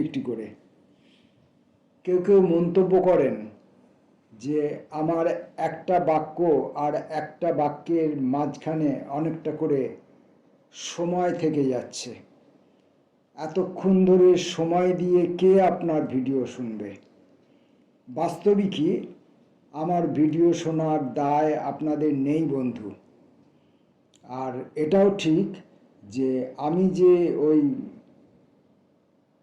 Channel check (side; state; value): both; identical; correlation 1.00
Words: একটি করে। কেউ কেউ মন্তব্য করেন যে আমার একটা বাক্য আর একটা বাক্যের মাঝখানে অনেকটা করে সময় থেকে যাচ্ছে। এতক্ষণ ধরে সময় দিয়ে কে আপনার ভিডিও শুনবে? বাস্তবিকই আমার ভিডিও শোনার দায় আপনাদের নেই বন্ধু। আর এটাও ঠিক যে আমি যে ওই